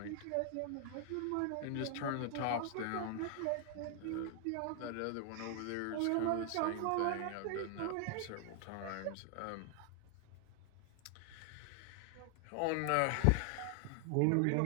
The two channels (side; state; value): both; different; correlation 0.00